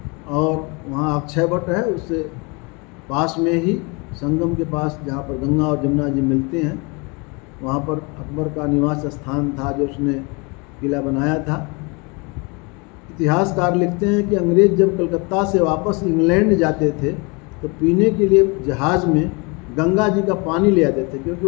और वहाँ अक्षय वट है, उससे पास में ही संगम के पास जहाँ पर गंगा और जमुना जी मिलते हैं, वहाँ पर अकबर का निवास स्थान था जो उसने किला बनाया था। इतिहासकार लिखते हैं कि अंग्रेज़ जब कलकत्ता से वापस इंग्लैंड जाते थे तो पीने के लिए जहाज़ में गंगा जी का पानी ले आते थे, क्योंकि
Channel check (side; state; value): right; quieter; 29.6 dB